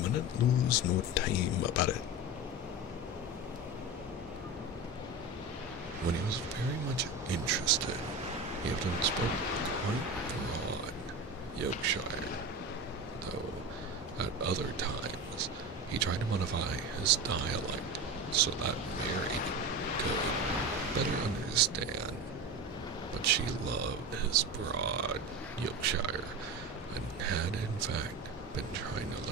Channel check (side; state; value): both; normal; correlation 0.26